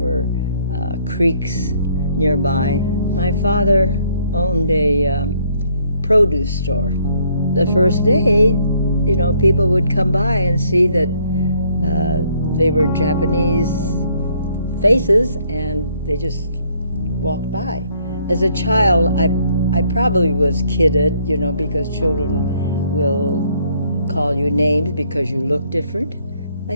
creeks nearby. My father owned a produce store. The first day, people would come by and see that they were Japanese faces, and they just walked by. As a child, I probably was kidded, because children will call you names because you look different. I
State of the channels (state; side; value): inverted; both; correlation -0.66